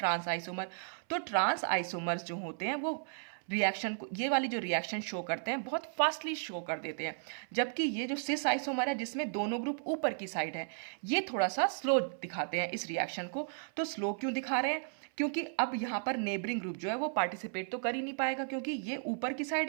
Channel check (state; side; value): silent; left; 55 dB below the other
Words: आइसोमर। तो ट्रांस आइसोमर्स जो होते हैं वो रिएक्शन को, ये वाली जो रिएक्शन शो करते हैं बहुत फास्टली शो कर देते हैं, जबकि ये जो सिस आइसोमर है जिसमें दोनों ग्रुप ऊपर की साइड है, ये थोड़ा सा स्लो दिखाते हैं इस रिएक्शन को। तो स्लो क्यों दिखा रहे हैं? क्योंकि अब यहाँ पर नेबरिंग ग्रुप जो है वो पार्टिसिपेट तो कर ही नहीं पाएगा, क्योंकि ये ऊपर की